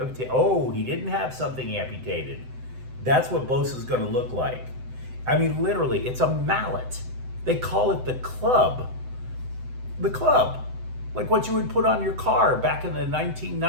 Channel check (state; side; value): late; left; 7.9 ms